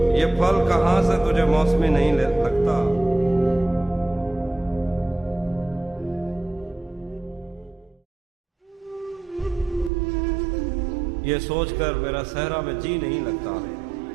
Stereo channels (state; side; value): drops out; left; at 9.9 s